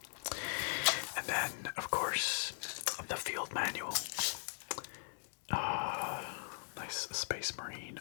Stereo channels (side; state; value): right; silent; digital silence